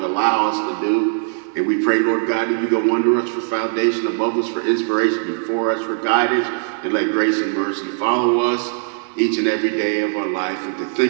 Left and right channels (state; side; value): silent; left; 56 dB below the other